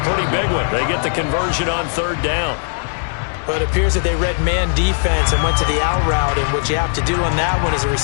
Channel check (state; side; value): silent; right; 67 dB below the other